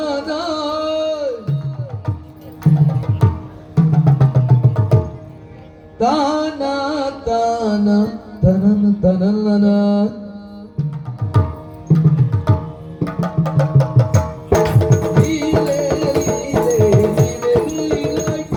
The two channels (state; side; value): identical; both; correlation 1.00